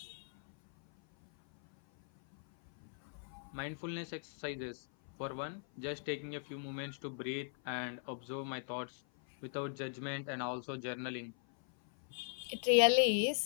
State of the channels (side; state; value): right; silent; 52 dB below the other